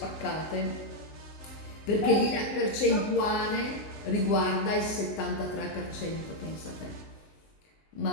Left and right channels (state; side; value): late; right; 19 ms